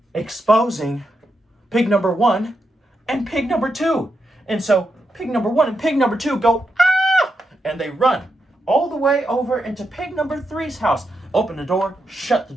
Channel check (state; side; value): normal; both; correlation 0.84